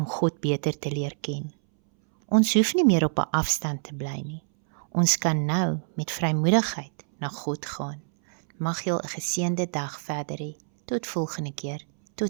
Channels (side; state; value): left; silent; 61 dB below the other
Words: God beter te leer ken. Ons hoef nie meer op 'n afstand te bly nie. Ons kan nou met vrymoedigheid na God gaan. Mag jy 'n geseënde dag verder hê. Tot volgende keer.